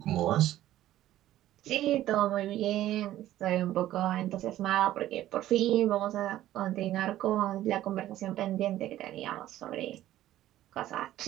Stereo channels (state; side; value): quieter; left; 13.7 dB